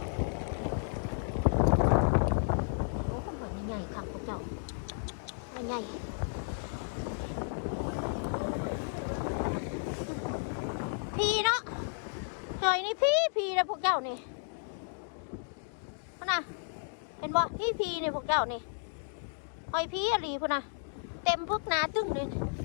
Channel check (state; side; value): silent; right; digital silence